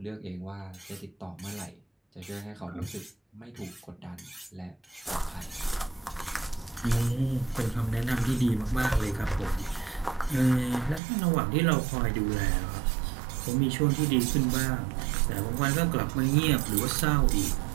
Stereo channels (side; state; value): left; drops out; at 11.0 s